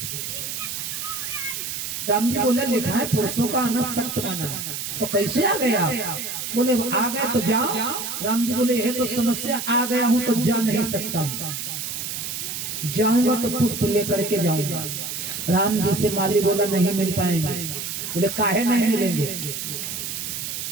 राम जी बोले लिखा है पुरुषों का आना सख्त मना। तो कैसे आ गए आप? बोले आ गए तो जाओ। राम जी बोले यह तो समस्या, आ गया हूं तो जा नहीं सकता, जाऊंगा तो पुष्प लेकर के जाऊंगा। राम जी से माली बोला नहीं मिल पाएंगे। बोले काहे नहीं मिलेंगे?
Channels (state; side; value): noise; right; hiss, 5 dB below the sound